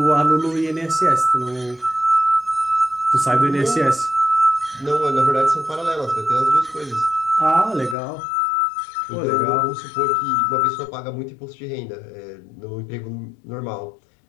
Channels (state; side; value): drops out; right; at 8.0 s